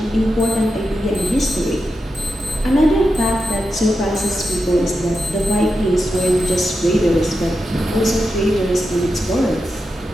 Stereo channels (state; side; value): normal; both; correlation 0.88